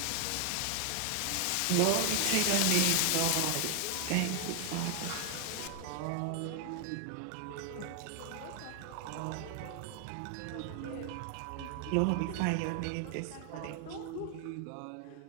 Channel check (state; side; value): different; both; correlation 0.00